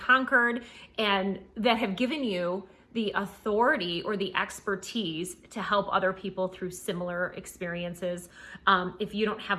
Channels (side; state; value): both; identical; correlation 1.00